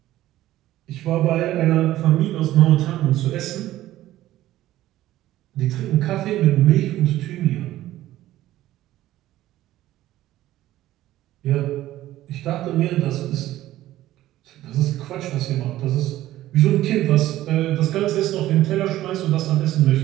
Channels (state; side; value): quieter; left; 14.6 dB